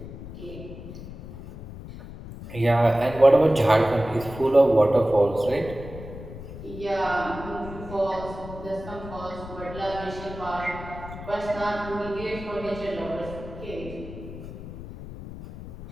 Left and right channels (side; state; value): left; noise; rumble, 12 dB below the sound